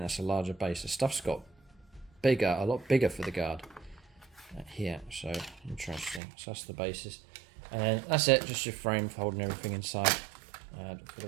that's a larger base. The stuff's got bigger, a lot bigger for the guard here. So interesting. So that's the bases, and then that's it. Just your frame for holding everything inside for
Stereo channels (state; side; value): drops out; left; at 6.2 s